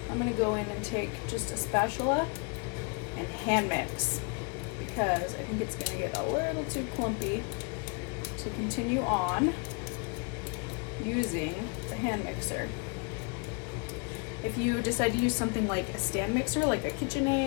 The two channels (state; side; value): quieter; right; 33.1 dB